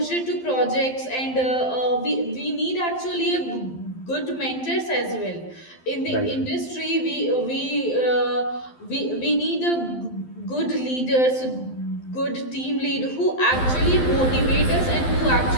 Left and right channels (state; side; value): late; right; 12 ms